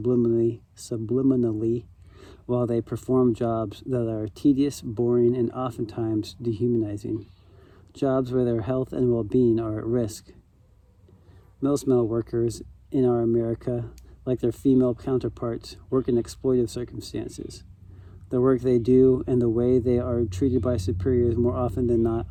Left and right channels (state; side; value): identical; both; correlation 1.00